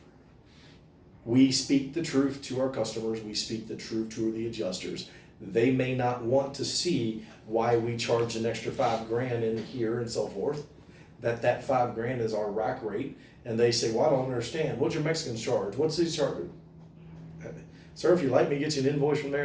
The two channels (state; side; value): identical; both; correlation 1.00